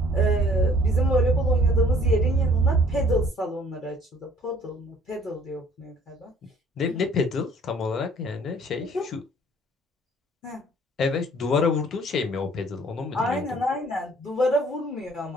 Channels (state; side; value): normal; both; correlation 0.57